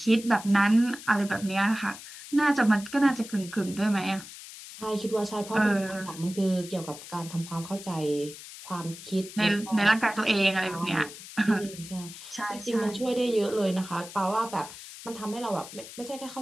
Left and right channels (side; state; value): left; noise; hiss, 14 dB below the sound